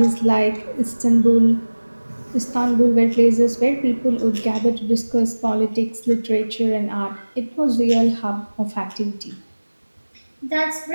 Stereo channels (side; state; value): both; inverted; correlation -1.00